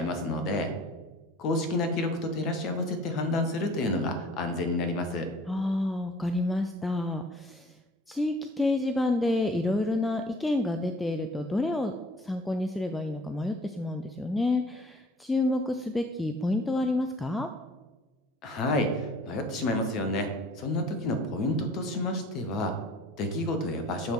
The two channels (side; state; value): both; normal; correlation 0.50